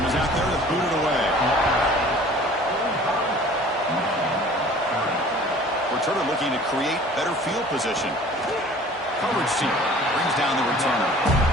is out there to boot it away. Returner looking to create better field position. Coverage team brings down the returner.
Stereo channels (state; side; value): normal; both; correlation 0.48